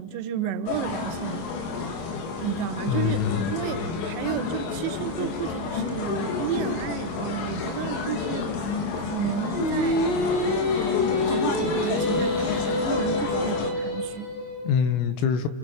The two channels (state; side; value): late; right; 25 ms